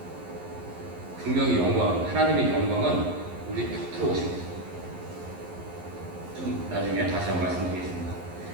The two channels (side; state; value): left; late; 11 ms